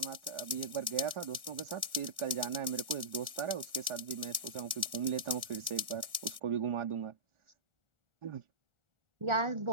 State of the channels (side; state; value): left; late; 1.4 ms